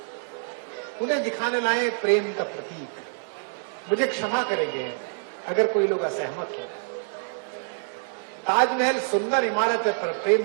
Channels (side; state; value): left; silent; digital silence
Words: उन्हें दिखाने लाए प्रेम का प्रतीक। मुझे क्षमा करेंगे अगर कोई लोग असहमत हो। ताजमहल सुंदर इमारत है पर